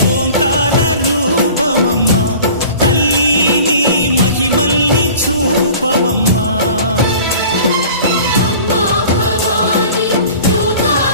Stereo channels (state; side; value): inverted; both; correlation -0.44